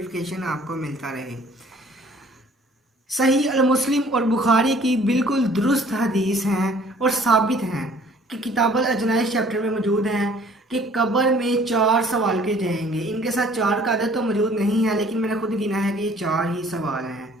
आपको मिलता रहे। सही अल मुस्लिम और बुखारी की बिल्कुल दुरुस्त हदीस हैं और साबित हैं कि किताबुल अजनाइस चैप्टर में मौजूद हैं कि कब्र में 4 सवाल के जाएंगे। इनके साथ 4 का अदद तो मौजूद नहीं है, लेकिन मैंने खुद गिना है कि ये 4 ही सवाल हैं।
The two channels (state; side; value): normal; both; correlation 0.55